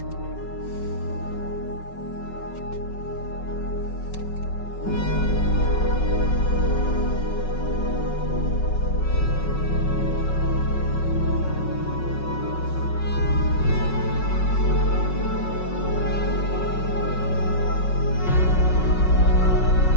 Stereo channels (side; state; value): right; late; 5.4 ms